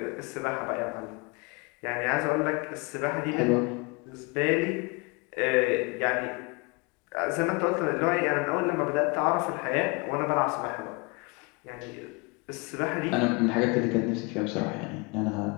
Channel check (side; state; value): right; quieter; 29.2 dB